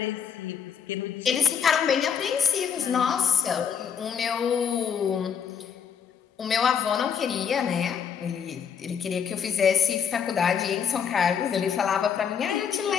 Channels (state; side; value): quieter; right; 7.4 dB